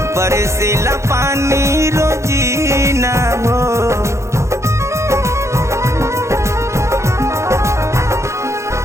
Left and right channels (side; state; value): left; late; 0.14 ms